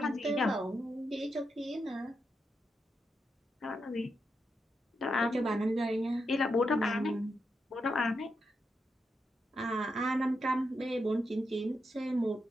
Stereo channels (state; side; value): normal; both; correlation 0.85